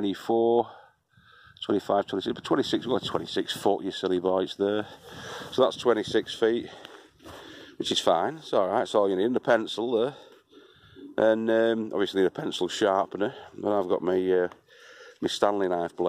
25, 26, but 26, well, 26 foot, you silly boy, it's there. So that's 26 feet, which is fine, it's alright, it's all you need. And a pencil there, and obviously need a pencil sharpener, but I've got my Stanley knife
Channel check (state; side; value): identical; both; correlation 1.00